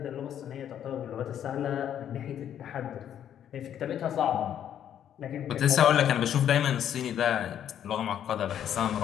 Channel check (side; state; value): right; quieter; 9.9 dB